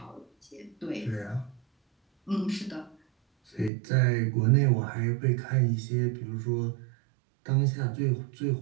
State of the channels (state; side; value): drops out; left; at 3.7 s